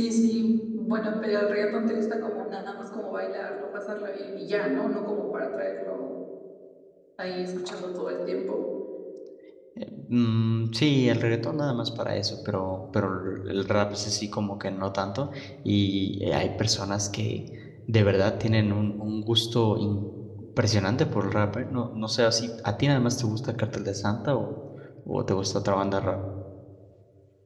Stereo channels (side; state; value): both; identical; correlation 1.00